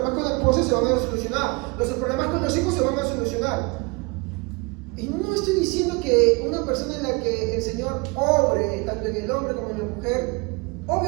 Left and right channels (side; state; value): left; quieter; 28.3 dB